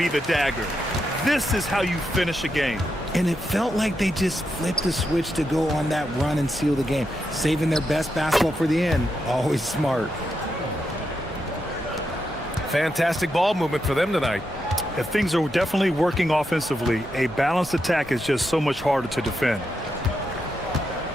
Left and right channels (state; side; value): normal; both; correlation 0.84